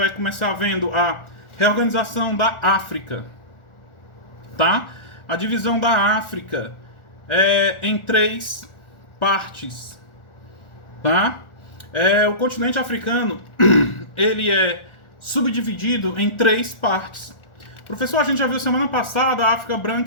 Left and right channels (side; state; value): right; late; 1.4 ms